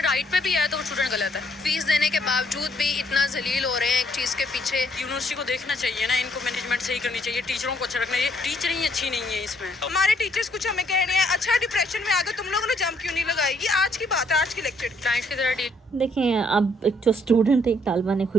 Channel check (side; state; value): both; normal; correlation 0.68